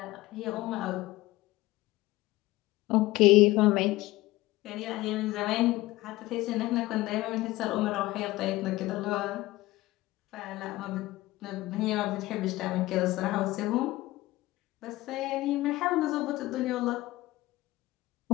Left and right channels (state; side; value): quieter; right; 18.2 dB